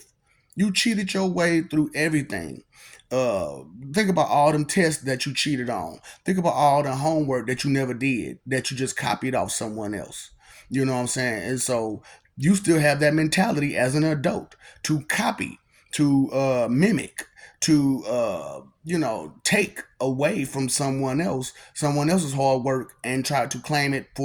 You cheated your way through everything. Uh, think about all them tests that you cheated on. Think about all the homework that you never did, that you just copied off someone else. You know what I'm saying? And so you still have that mentality as an adult to copy, to mimic, to take away from someone else's hard work, and try to claim it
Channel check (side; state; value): both; identical; correlation 1.00